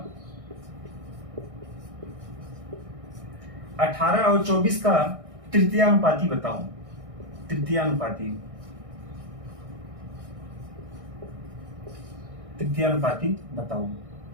18 और 24 का तृतीयानुपाती बताओ। तृतीयानुपाती बताओ।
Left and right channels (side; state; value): left; late; 1.6 ms